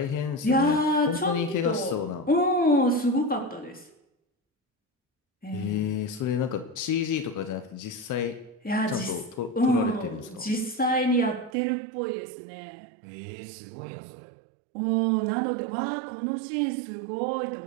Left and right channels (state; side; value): drops out; left; at 11.5 s